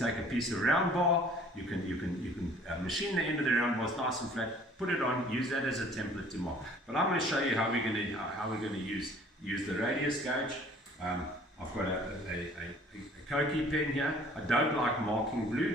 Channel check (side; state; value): both; normal; correlation 0.53